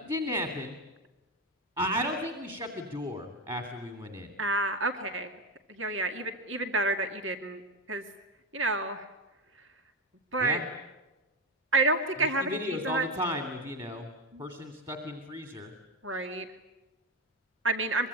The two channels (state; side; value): normal; both; correlation 0.13